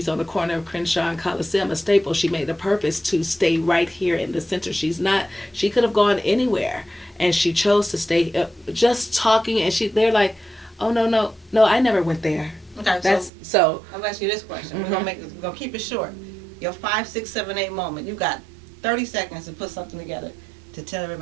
on the corner of Crenshaw and Coliseum, a staple. She made a purpose to stay right here in the center. She could have gone anywhere, and she chose to stay just talking. And they're like, oh, no, I never went there. Okay, so I'll ask you this question. We're gonna keep it short. Your 5, 6, 7, 8 moment. You got 30 seconds to put something together to tell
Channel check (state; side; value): drops out; left; at 13.3 s